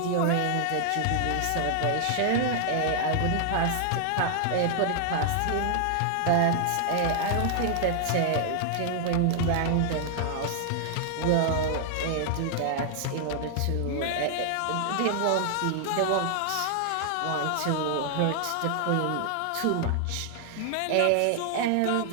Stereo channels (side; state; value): both; different; correlation 0.00